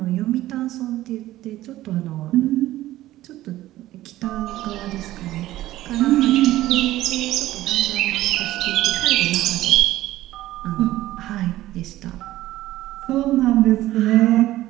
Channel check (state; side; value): quieter; left; 15.4 dB